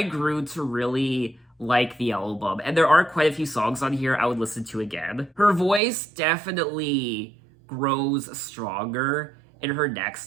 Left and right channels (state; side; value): drops out; left; at 5.8 s